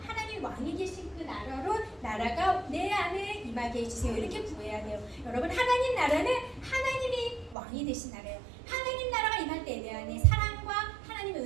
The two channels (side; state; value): left; drops out; at 7.6 s